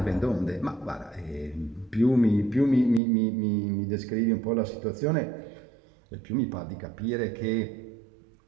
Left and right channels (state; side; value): drops out; left; at 3.0 s